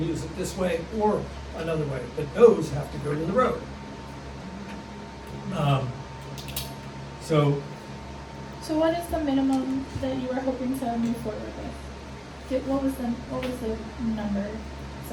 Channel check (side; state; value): both; identical; correlation 1.00